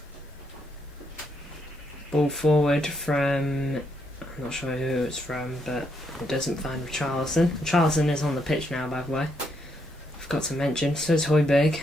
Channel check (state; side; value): normal; both; correlation 0.77